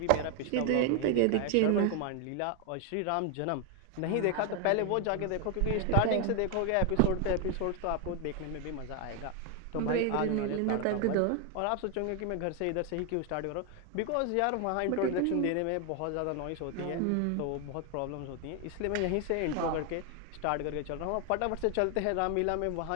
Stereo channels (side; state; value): both; different; correlation 0.01